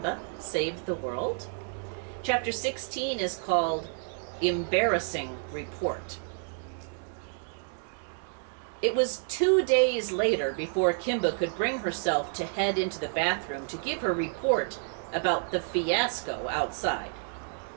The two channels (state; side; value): silent; left; 58 dB below the other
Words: Saved the World. Chapter 16 is called Embarrassing Report. It was 2 days later before Kimba could bring herself to head into the bathroom to give her report about the fiasco outside.